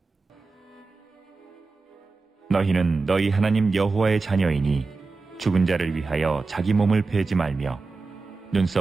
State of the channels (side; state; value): left; quieter; 4.0 dB